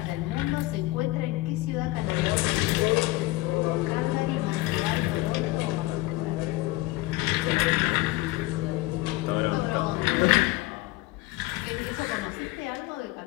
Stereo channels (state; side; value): quieter; right; 19.2 dB